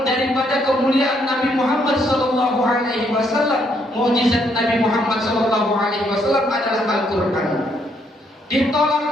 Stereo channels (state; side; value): normal; both; correlation 0.72